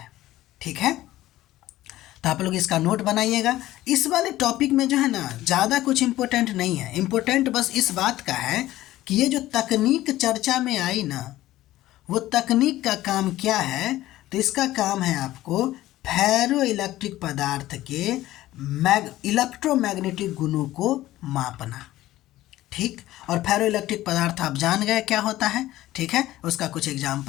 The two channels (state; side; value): quieter; right; 15.5 dB